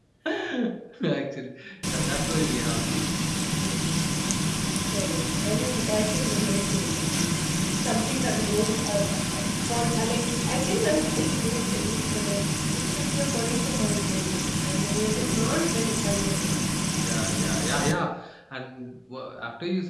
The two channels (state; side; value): identical; both; correlation 1.00